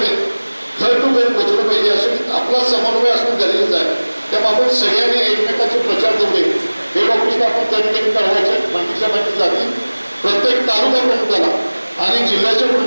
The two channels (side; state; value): both; inverted; correlation -1.00